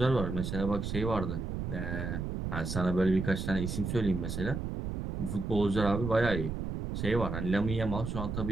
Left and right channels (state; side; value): noise; right; rumble, 4 dB below the sound